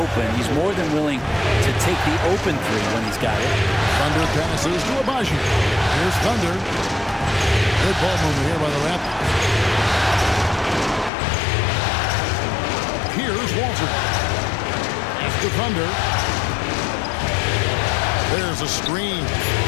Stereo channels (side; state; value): right; drops out; at 11.1 s